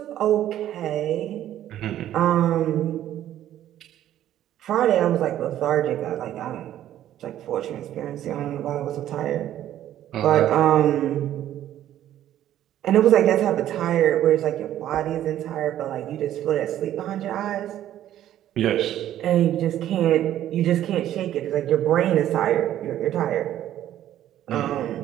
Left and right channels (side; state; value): left; quieter; 12.1 dB